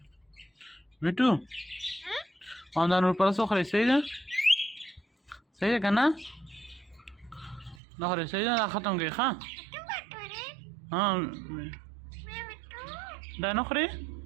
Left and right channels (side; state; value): left; drops out; at 7.8 s